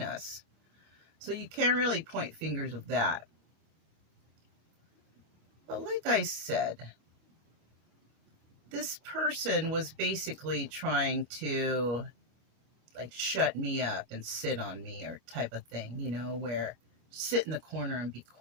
So you can't really point fingers of that. But like I said, this person was basically trying to like shut me up and sit on me or type of thing, where sit in the corner and be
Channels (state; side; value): late; left; 25 ms